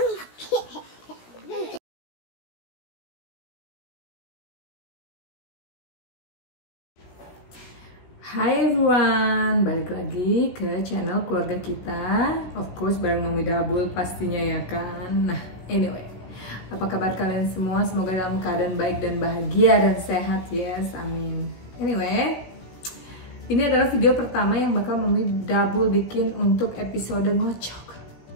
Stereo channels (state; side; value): late; right; 17 ms